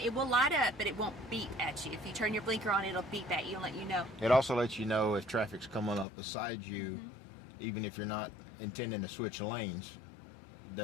will light up, but it won't beep at you. If you turn your blinker on, it'll beep at you and let you know. It also lets you know if traffic's coming up beside you, even if you're not intending to switch lanes.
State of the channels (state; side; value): drops out; right; at 6.1 s